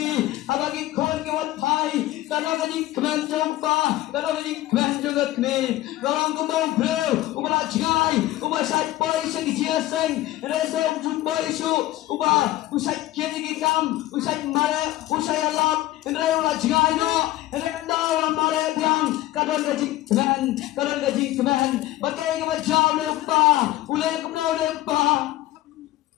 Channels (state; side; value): quieter; right; 16.1 dB